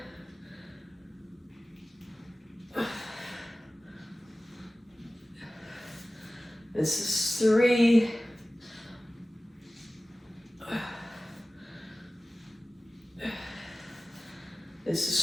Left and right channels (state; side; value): normal; both; correlation 0.97